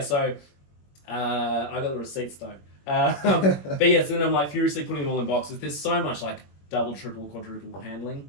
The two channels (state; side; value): late; right; 21 ms